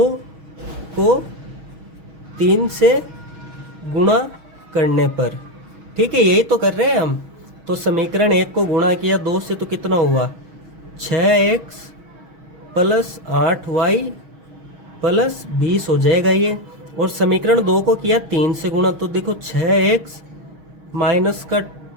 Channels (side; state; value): left; late; 6.3 ms